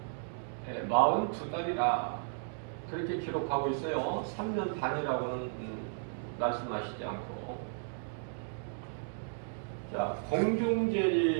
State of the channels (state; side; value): silent; left; digital silence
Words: 42달이라 그렇게 기록하고 있어요. 3년 반이라고는 말씀하시지 않고. 자,